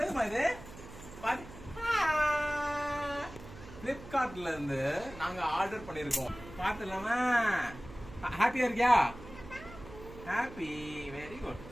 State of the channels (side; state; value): right; noise; hum, 16 dB below the sound